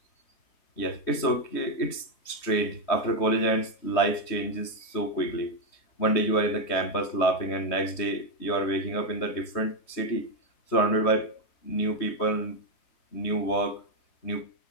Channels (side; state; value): right; late; 3.2 ms